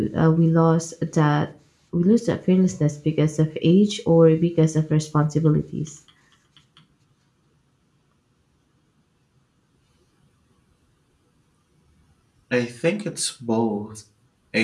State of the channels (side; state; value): both; identical; correlation 1.00